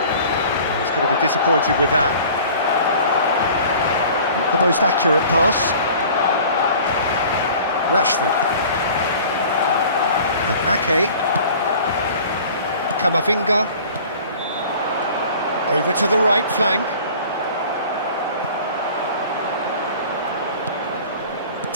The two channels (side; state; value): both; inverted; correlation -0.46